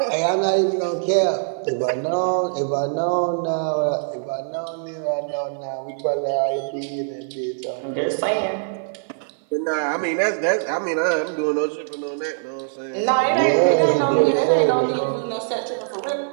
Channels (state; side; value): silent; left; 57 dB below the other